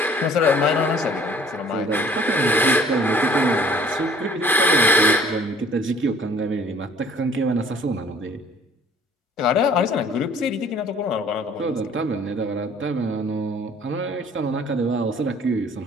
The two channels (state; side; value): normal; both; correlation 0.55